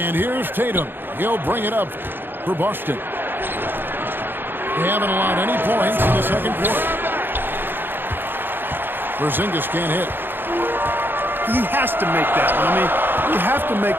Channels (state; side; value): late; left; 0.099 ms